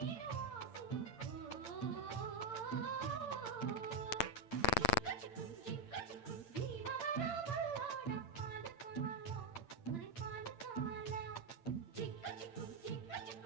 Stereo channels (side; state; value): right; late; 8.8 ms